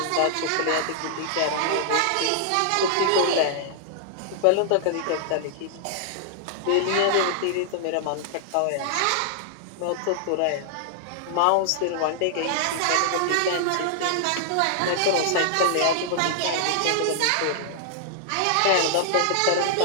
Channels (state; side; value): different; both; correlation -0.01